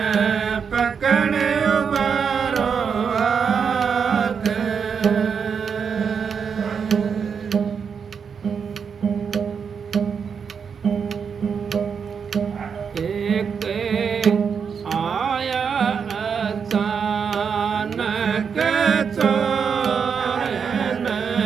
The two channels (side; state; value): left; quieter; 6.5 dB